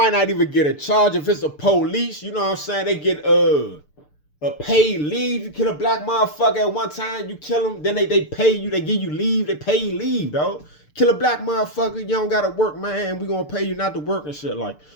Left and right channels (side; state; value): right; late; 6.7 ms